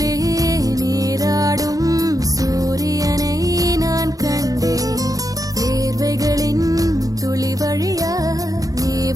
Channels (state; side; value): late; left; 0.17 ms